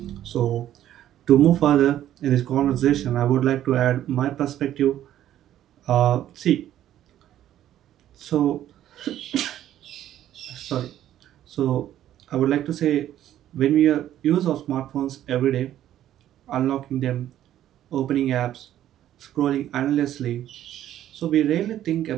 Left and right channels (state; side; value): quieter; left; 12.0 dB